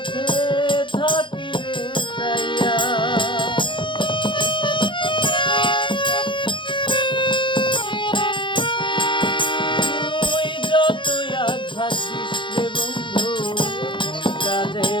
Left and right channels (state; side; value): late; right; 0.23 ms